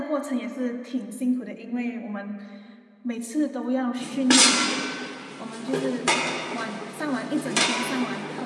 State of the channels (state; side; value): identical; both; correlation 1.00